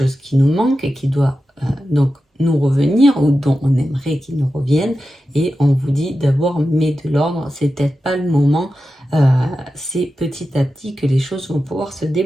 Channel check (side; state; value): both; normal; correlation 0.92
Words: qui nous manque et qui doit donc nous revenir ou dont on aimerait qu'il nous revienne. Et on vous dit d'abord, mets de l'ordre, c'est peut-être pas le moment. C'est petit à petit que les choses vont pouvoir se